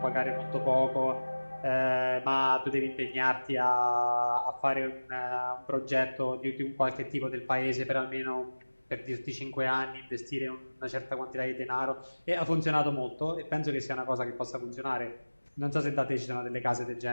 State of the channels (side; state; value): both; inverted; correlation -1.00